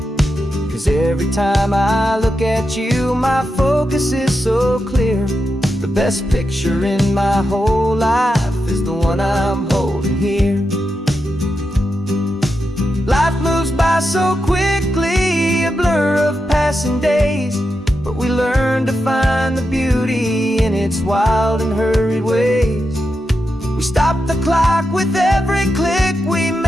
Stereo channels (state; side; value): normal; both; correlation 0.87